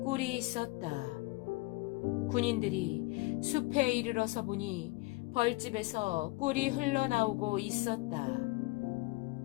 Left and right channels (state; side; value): quieter; right; 23.5 dB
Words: 꿀이 있었다. 군인들이 숲에 이르러서 보니 벌집에서 꿀이 흘러나오고 있었다.